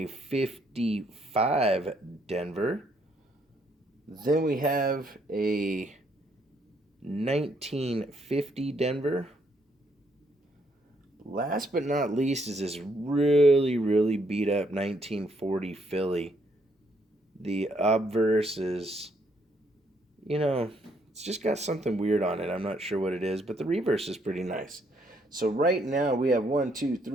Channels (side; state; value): both; normal; correlation 0.71